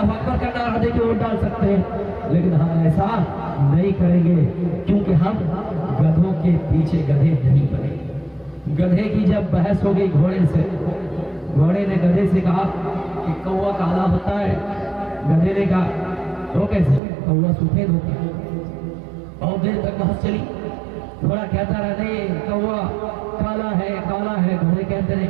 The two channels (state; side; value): drops out; left; at 17.0 s